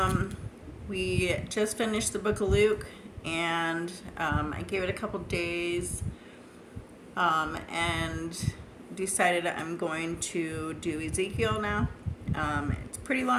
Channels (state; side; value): identical; both; correlation 1.00